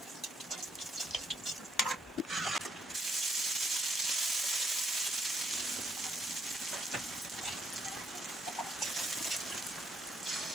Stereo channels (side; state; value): both; normal; correlation 0.74